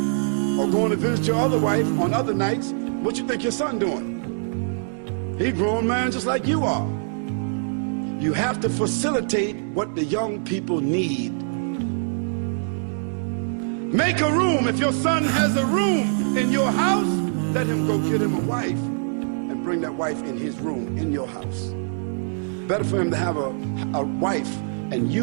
or going to visit your other wife on other nights. What you think your son doing? He a grown man just like you are. You have to facilitate what the young people need. Make a room. If your son has a room in your house, let him go get him a wife and bring that wife in his room in your house. Better for him to have a wife, and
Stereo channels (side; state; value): left; silent; digital silence